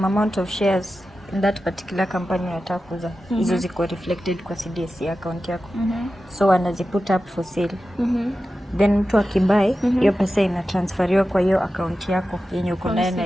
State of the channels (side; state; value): both; normal; correlation 0.93